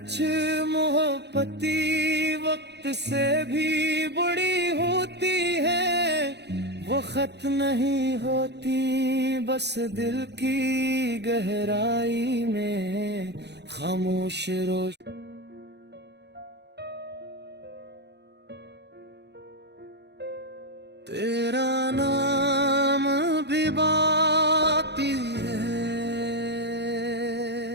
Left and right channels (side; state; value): left; late; 0.50 ms